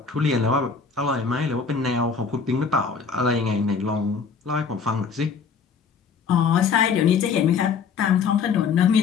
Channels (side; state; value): right; quieter; 5.7 dB